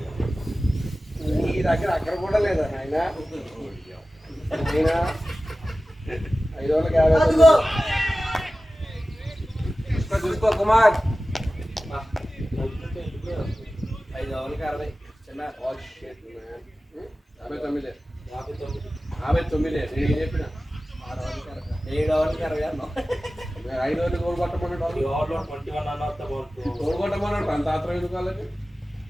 నీ దగ్గర అక్కడ కూడా లేదా ఆయన 550 అదిగో చూసుకో కుమార్ 5 ఓవర్లకి 60 చిన్న 59 నేను చెప్పిన 7 ఓవర్లకి 60 అన్నాం 5 ఓవర్లు గోల్ కొట్టమన్నాడు గోల్ కొట్టమన్నాడు అంత ఆత్రం ఎందుకు వాళ్ళకి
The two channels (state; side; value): normal; both; correlation 0.96